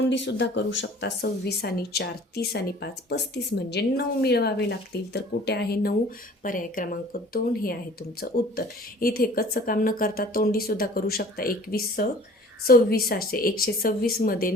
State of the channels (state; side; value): normal; both; correlation 0.48